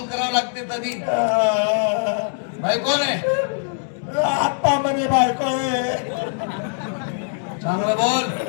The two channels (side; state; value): right; silent; digital silence